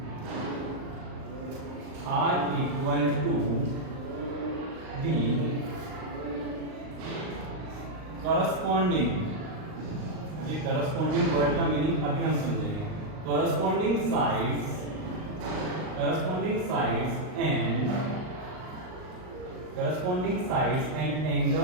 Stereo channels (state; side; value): late; left; 38 ms